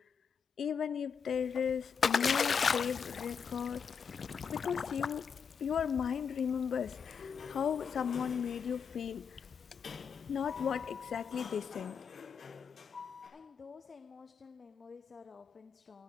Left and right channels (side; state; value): right; quieter; 6.5 dB